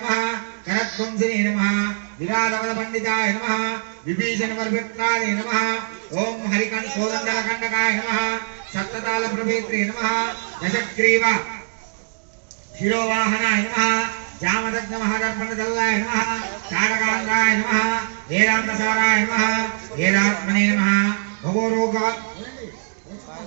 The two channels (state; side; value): silent; left; digital silence